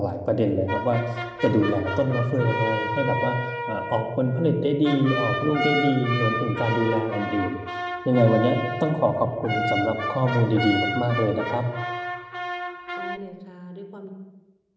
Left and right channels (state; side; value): identical; both; correlation 1.00